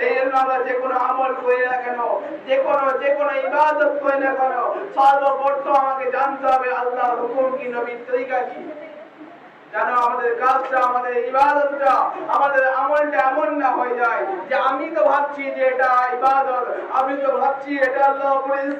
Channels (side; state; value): both; identical; correlation 1.00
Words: জন্য আমরা যে কোনো আমল করি না কেন, যে কোনো ইবাদত করি না কেন, সর্বপ্রথম আমাকে জানতে হবে আল্লাহর হুকুম কি, নবীর তরিকা কি। যেন আমাদের কাজটা, আমাদের ইবাদতটা, আমাদের আমলটা এমন না হয়ে যায় যে আমি তো ভাবছি যে এটা ইবাদত, আমি তো ভাবছি এটা আল্লাহ